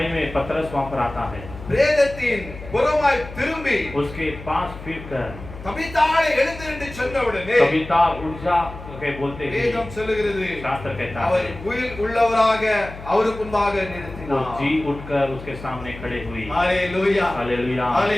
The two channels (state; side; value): noise; left; hum, 14 dB below the sound